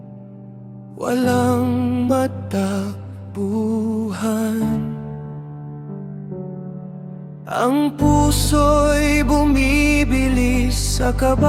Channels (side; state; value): both; identical; correlation 1.00